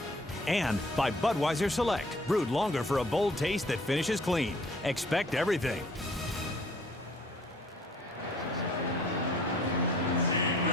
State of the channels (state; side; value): normal; both; correlation 0.56